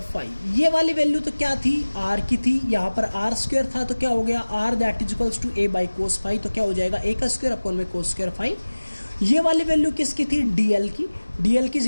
phi. ये वाली वैल्यू तो क्या थी, आर की थी, यहाँ पर आर स्क्वायर था, तो क्या हो गया R that is equals to A by cos phi, तो क्या हो जाएगा ए का स्क्वायर अपॉन में कोस स्क्वायर फाई। ये वाली वैल्यू किसकी थी, डीएल की, डीएल की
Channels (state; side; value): inverted; both; correlation -1.00